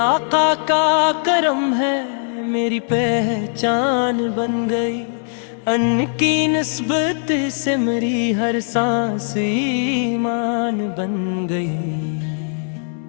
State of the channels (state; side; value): silent; right; digital silence